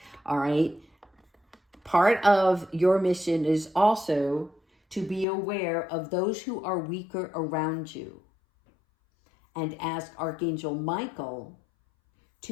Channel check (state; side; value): drops out; right; at 5.2 s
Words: all right? Part of your mission is also to be aware of those who are weaker around you and ask Archangel Michael